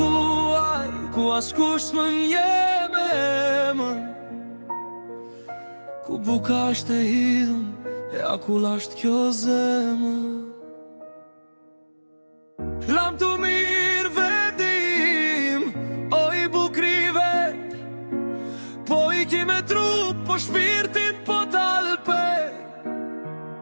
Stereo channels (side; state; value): both; inverted; correlation -1.00